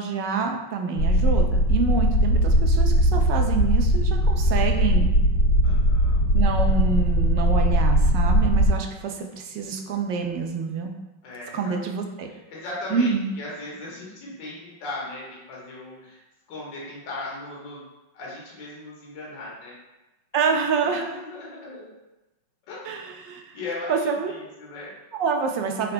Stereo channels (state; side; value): late; right; 5.4 ms